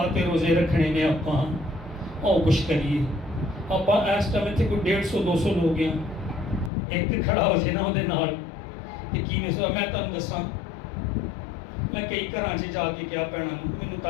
تے روزے رکھنے نے اپاں او کچھ کریے. اپاں اس ٹائم تے کوئی 150-200 لوگ ہیں. ایک کھڑا ہو جائے نا وہ نال تے کی میں تانوں دساں میں کئی گھراں 'ਚ جا کے کیا بھੈਣਾਂ ਨੂੰ ਮੈਨੂੰ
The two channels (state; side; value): drops out; right; at 6.7 s